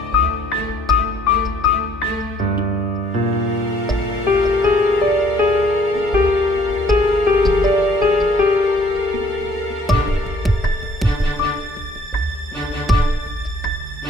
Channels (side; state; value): both; normal; correlation 0.60